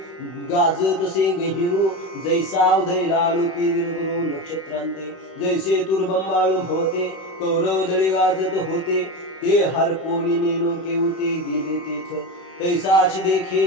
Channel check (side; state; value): right; late; 31 ms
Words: गाजतसे गहिरू, जैसा उदय लालूपी दिनकरो नक्षत्रांते, जैसे तुरबंबाळू भवते कौरव दळी गाजत होते, ते हरपोनी नेनो केवते गेले तेथ, तैसाची देखे